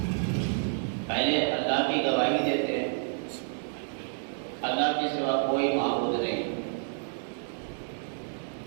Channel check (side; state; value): left; silent; digital silence